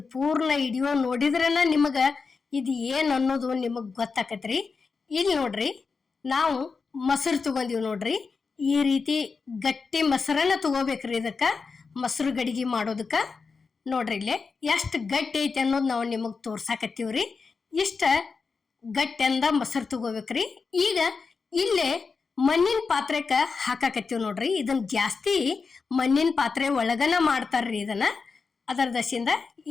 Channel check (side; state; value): right; quieter; 4.8 dB